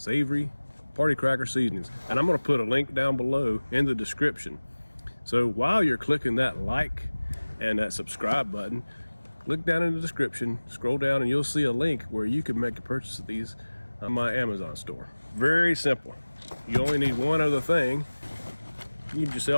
party cracker seasonings. And I'm gonna put a link down below in the description. So while you're clicking that like and that subscribe button, look down in the description, scroll down, and you'll see a link where you can make a purchase of these on my Amazon store. Very simple. You only need one other thing. You need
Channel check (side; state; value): both; inverted; correlation -1.00